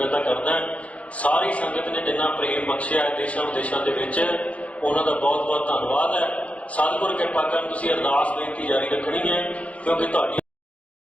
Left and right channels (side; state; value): right; late; 0.065 ms